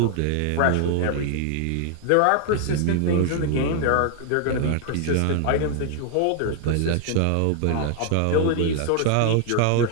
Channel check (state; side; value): different; both; correlation 0.00